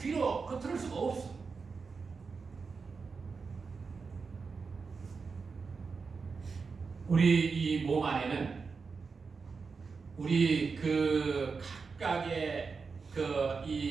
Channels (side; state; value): left; quieter; 4.9 dB